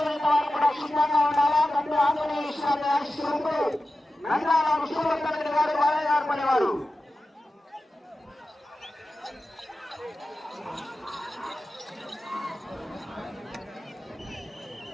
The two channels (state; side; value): normal; both; correlation 0.93